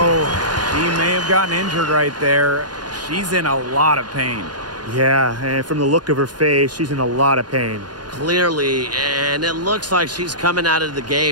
he may have gotten injured right there. She's in a lot of pain. Yeah, and from the look of her face, she's in a lot of pain. Clearly, and it looks like she's coming out of the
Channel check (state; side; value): late; left; 0.70 ms